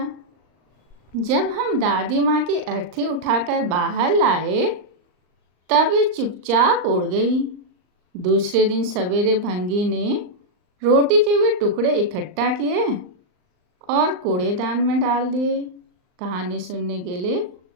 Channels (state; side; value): late; left; 39 ms